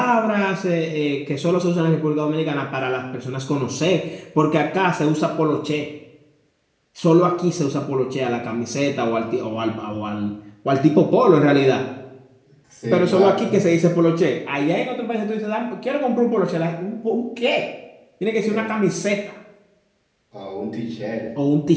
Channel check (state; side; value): identical; both; correlation 1.00